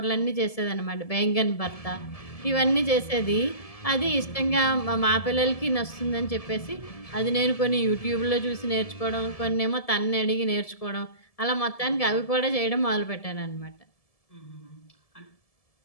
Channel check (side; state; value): right; late; 1.7 ms